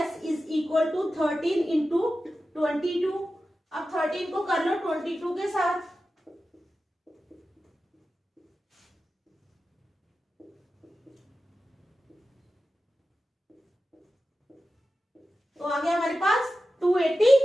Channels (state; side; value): normal; both; correlation 0.93